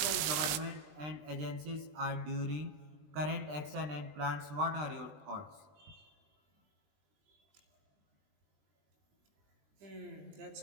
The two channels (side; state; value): left; late; 20 ms